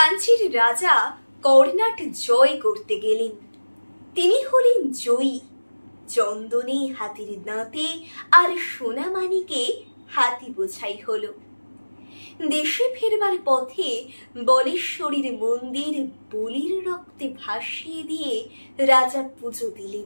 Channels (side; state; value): both; inverted; correlation -1.00